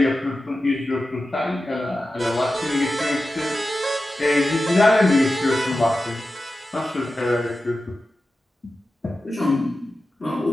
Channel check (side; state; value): both; normal; correlation 0.93